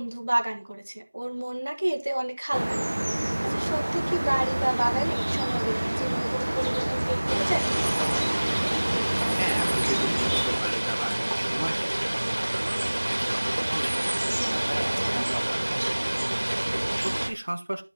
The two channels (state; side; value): inverted; both; correlation -1.00